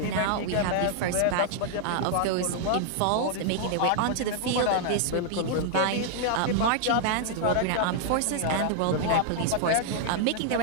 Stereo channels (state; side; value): different; both; correlation -0.01